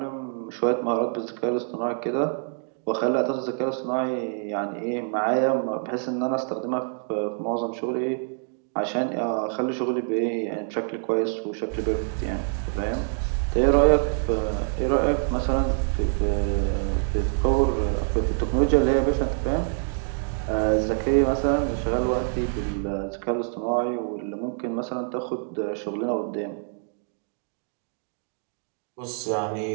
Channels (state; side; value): silent; left; 61 dB below the other